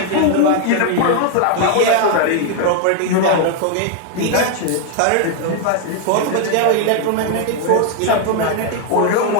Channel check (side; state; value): both; different; correlation 0.00